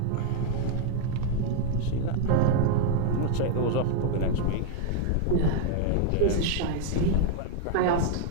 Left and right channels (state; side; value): different; both; correlation 0.00